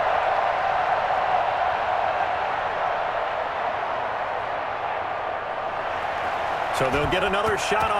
So they'll get another shot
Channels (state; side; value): identical; both; correlation 1.00